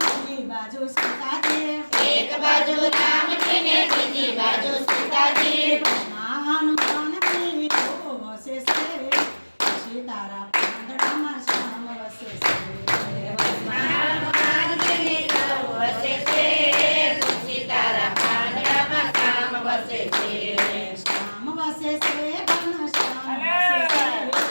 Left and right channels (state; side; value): inverted; both; correlation -1.00